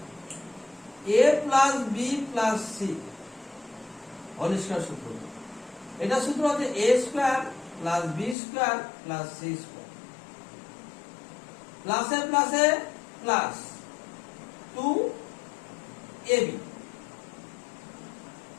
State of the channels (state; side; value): drops out; right; at 8.3 s